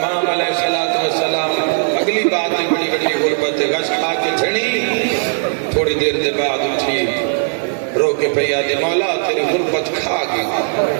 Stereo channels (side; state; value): left; silent; 56 dB below the other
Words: علیہ السلام اگلی بات بڑی بڑی غربت غش کھا کے چھڑی تھوڑی دیر دے بعد اٹھی رو کے پہیا دے مولا تیری غربت کھا گئی